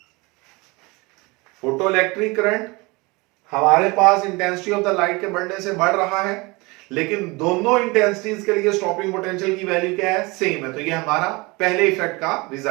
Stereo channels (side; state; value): left; quieter; 25.3 dB